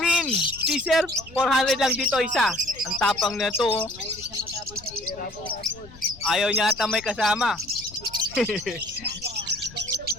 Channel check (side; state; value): left; noise; rumble, 20 dB below the sound